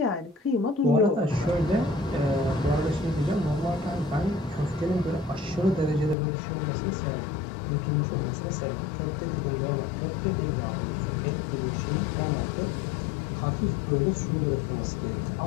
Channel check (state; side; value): drops out; right; at 6.2 s